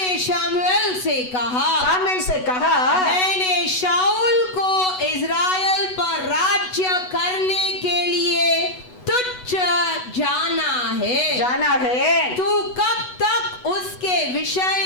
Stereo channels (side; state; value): right; late; 8.1 ms